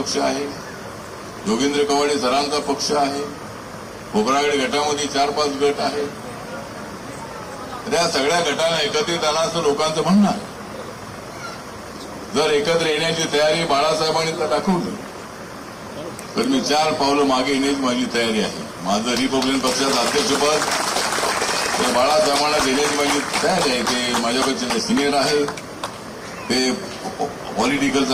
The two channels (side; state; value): both; identical; correlation 1.00